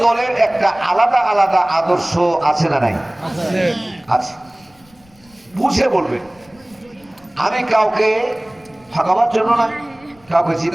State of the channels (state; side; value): noise; left; rumble, 30 dB below the sound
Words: দলের একটা আলাদা আলাদা আদর্শ আছে না নাই? আছে। বুঝে বলবেন। আমি কাউকে ঠকাবার জন্য নয়, কাউকে